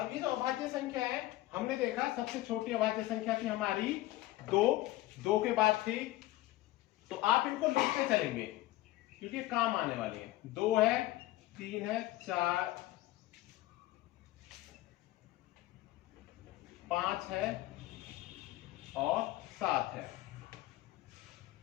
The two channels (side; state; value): right; quieter; 17.0 dB